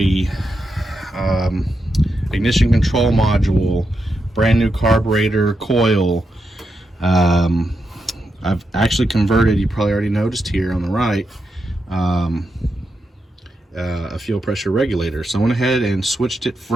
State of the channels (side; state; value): both; normal; correlation 0.85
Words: ignition control module, brand new carburetor, coil. I've actually converted, you probably already noticed here on the right, a fuel pressure regulator. So I went ahead and switched it